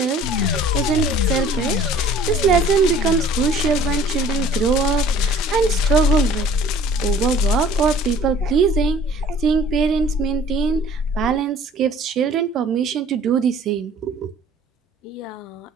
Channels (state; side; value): normal; both; correlation 0.52